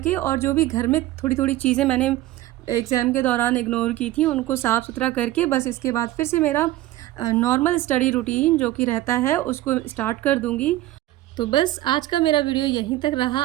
और जो भी घर में थोड़ी-थोड़ी चीज़ें मैंने एग्ज़ाम के दौरान इग्नोर की थी उनको साफ़-सुथरा करके बस इसके बाद फिर से मेरा नॉर्मल स्टडी रूटीन जो कि रहता है उसको स्टार्ट कर दूँगी। तो बस आज का मेरा वीडियो यहीं तक रहा।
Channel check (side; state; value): left; quieter; 15.7 dB